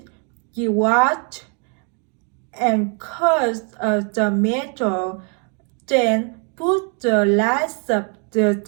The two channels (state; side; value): quieter; left; 37.9 dB